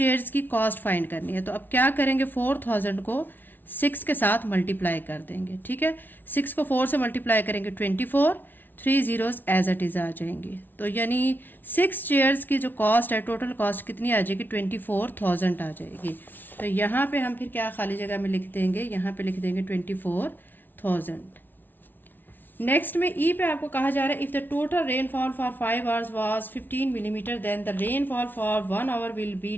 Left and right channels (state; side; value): late; right; 0.090 ms